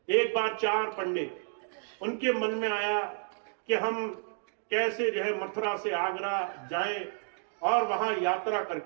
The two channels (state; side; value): silent; left; 57 dB below the other